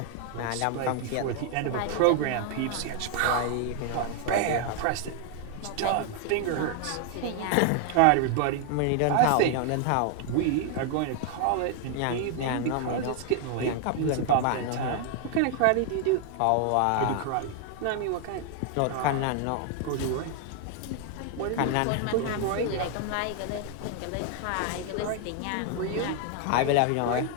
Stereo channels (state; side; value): different; both; correlation 0.00